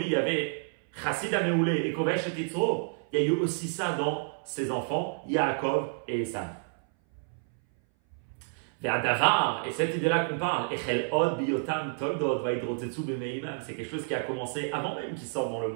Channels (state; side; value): silent; left; 58 dB below the other